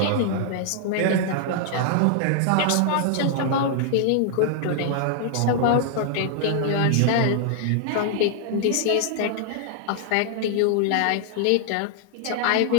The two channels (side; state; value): both; different; correlation 0.00